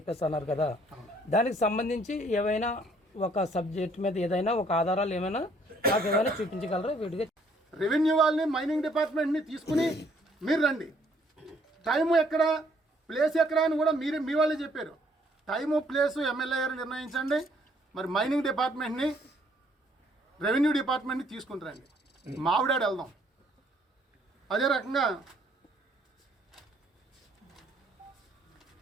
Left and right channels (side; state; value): both; normal; correlation 0.64